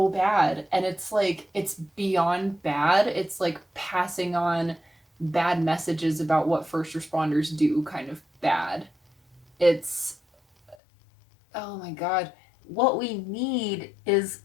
bad, and it's like, it's beyond bad. It's like passing on bad messages about what first responders do kind of bad. It's, oh my god. What we need is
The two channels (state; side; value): drops out; right; at 10.8 s